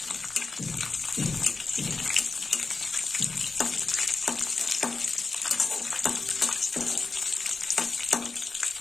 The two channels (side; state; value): right; quieter; 4.1 dB